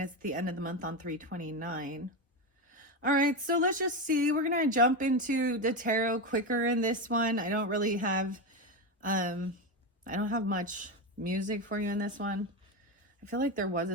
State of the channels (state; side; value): normal; both; correlation 0.15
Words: the end of the month on 329. All right, so let's just see. We're going to jump into the tarot quicker in this one. I don't really have, I don't have much music for you in this one. I feel like there was a